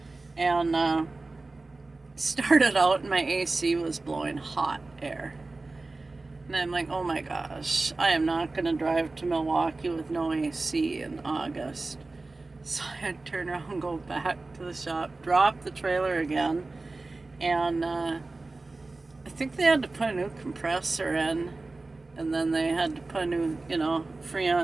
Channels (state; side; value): quieter; left; 3.4 dB